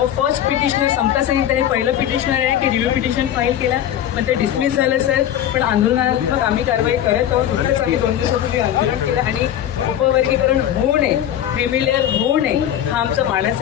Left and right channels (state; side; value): quieter; right; 11.0 dB